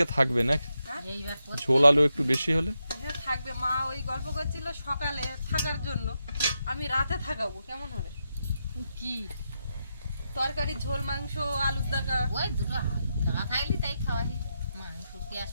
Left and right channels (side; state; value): both; inverted; correlation -0.85